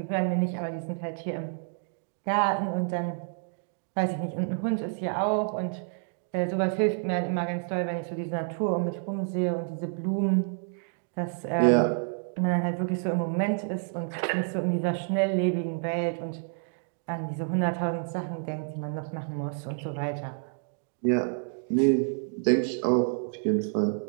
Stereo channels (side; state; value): left; silent; 59 dB below the other